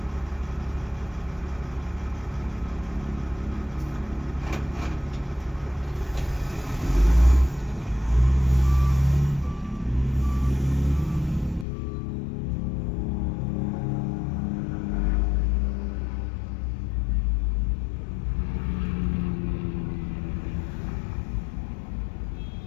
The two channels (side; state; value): right; drops out; at 11.7 s